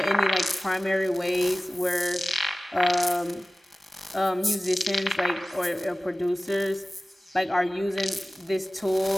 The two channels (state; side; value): normal; both; correlation 0.96